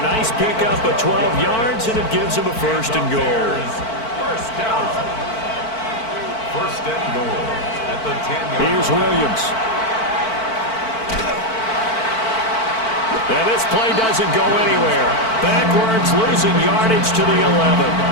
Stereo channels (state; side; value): late; right; 4.5 ms